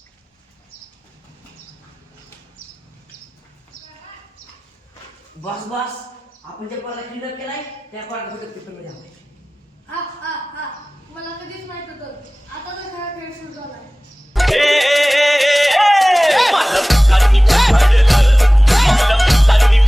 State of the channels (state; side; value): normal; both; correlation 0.98